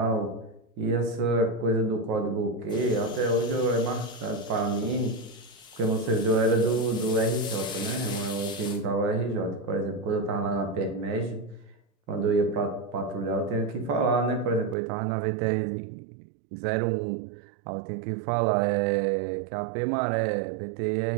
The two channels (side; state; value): left; drops out; at 14.8 s